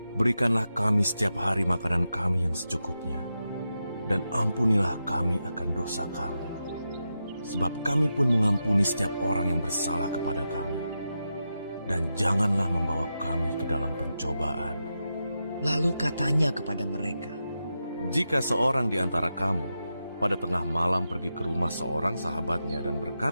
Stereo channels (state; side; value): inverted; both; correlation -0.88